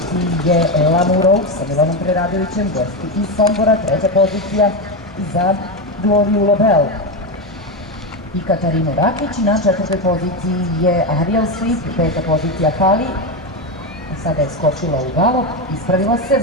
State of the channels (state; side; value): normal; both; correlation 0.13